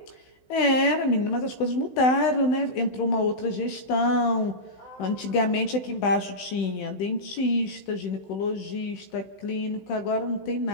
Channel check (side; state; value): right; late; 16 ms